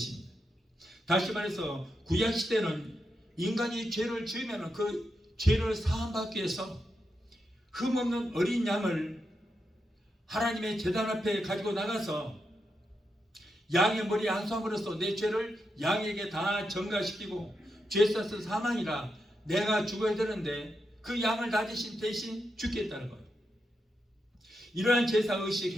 다시 말해서 구약시대는 인간이 죄를 지으면 그 죄를 사함받기 위해서 흠없는 어린 양을 하나님의 제단 앞에 가지고 나가서 양의 머리 한 솜으로써 내 죄를 양에게 다 전가시키고 죄 사서 사망이라 내가 죽어야 되는데 그 양을 다 대신 죽겠다는 거예요. 이러한 제사의식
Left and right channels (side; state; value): both; normal; correlation 0.85